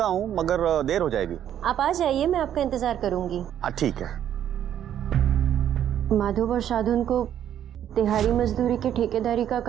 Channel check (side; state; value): left; quieter; 10.4 dB